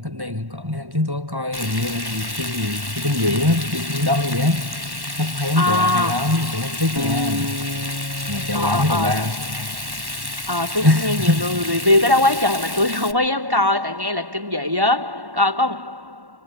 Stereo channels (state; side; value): late; left; 1.1 ms